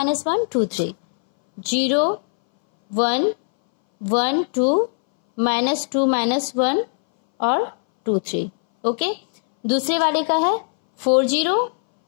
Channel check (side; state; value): right; silent; 63 dB below the other